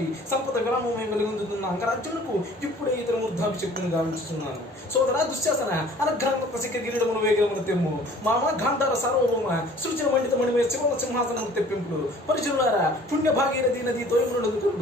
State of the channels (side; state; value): both; normal; correlation 0.51